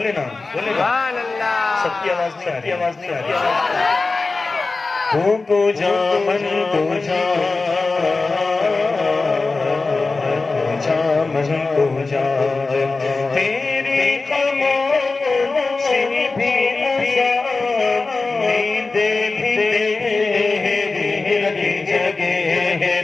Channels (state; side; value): quieter; right; 3.8 dB